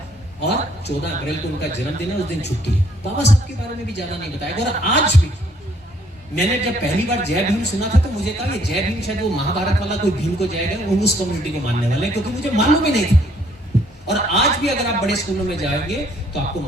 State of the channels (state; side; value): normal; both; correlation 0.65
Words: और 14 अप्रैल को उनका जन्मदिन है, उस दिन छुट्टी है। बाबा साहब के बारे में भी ज्यादा नहीं बताया। और आज भी मैंने जब पहली बार जय भीम सुना था तो मुझे कहा ये जय भीम शायद वो महाभारत वाला कोई भीम को जाएगा, वो उस कम्युनिटी को मानने वाले, क्योंकि मुझे मालूम ही नहीं था। और आज भी अगर आप बड़े स्कूलों में जाएंगे तो आपको